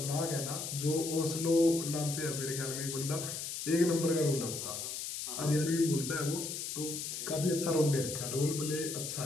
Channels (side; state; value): left; noise; hiss, 5 dB below the sound